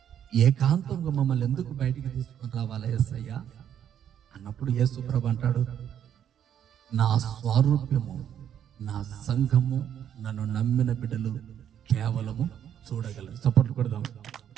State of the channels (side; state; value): left; quieter; 9.5 dB